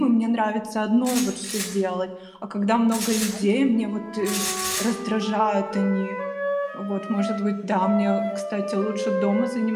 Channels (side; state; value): both; identical; correlation 1.00